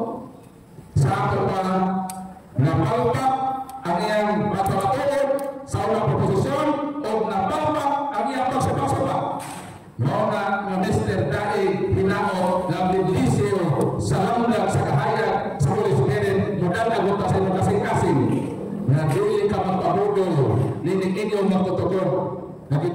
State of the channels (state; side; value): identical; both; correlation 1.00